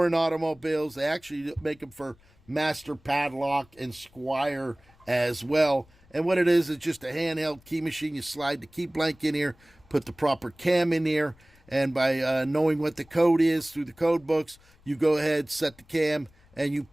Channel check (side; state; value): left; noise; rumble, 29 dB below the sound